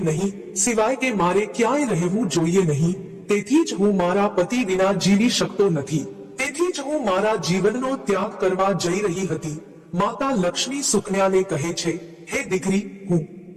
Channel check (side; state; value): both; identical; correlation 1.00